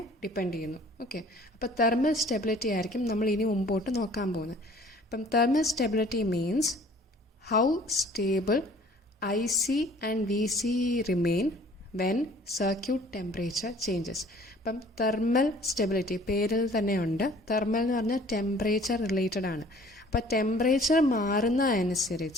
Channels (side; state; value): both; normal; correlation 0.52